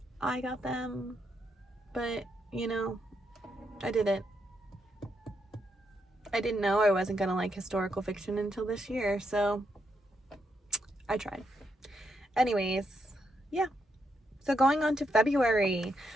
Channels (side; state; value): both; normal; correlation 0.80